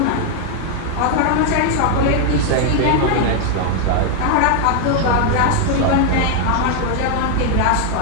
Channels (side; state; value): both; different; correlation 0.00